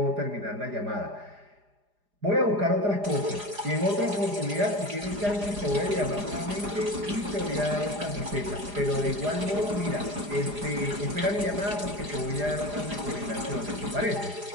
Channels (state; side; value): late; left; 4.9 ms